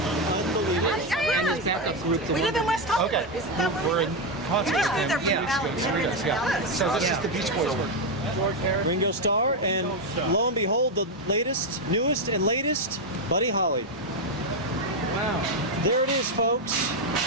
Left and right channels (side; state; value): both; normal; correlation 0.06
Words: Unbelievable. And his backup group. We live in West Hollywood. Okay. Isn't that We're in concert with him They're weeks ago, Cerritos, yeah. So this is the Beach Boys work. Ringo Starr, and lo and behold, the latest, newest, and latest, Buddy Holly. Wow. There it is, folks.